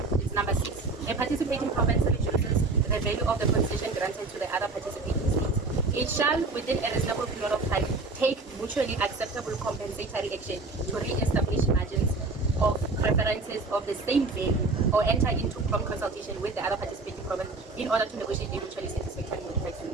it's number 6. A participating province reduces the value of the concession granted to the other participating states. It shall, within a reasonable period of time, take mutually acceptable compensatory action to re-establish margins of preferences of the same value or enter into prompt consultation with the other participating province in order to negotiate a mutually satisfactory modified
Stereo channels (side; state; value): left; quieter; 3.5 dB